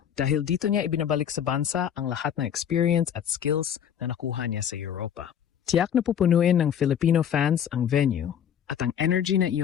dahil dito niya ibinabalik sa bansa ang lahat ng experience at skills na nakuha niya sa Europa. Tiyak na pupunuin ng Filipino fans ang venue at ang energy na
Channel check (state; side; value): quieter; right; 8.9 dB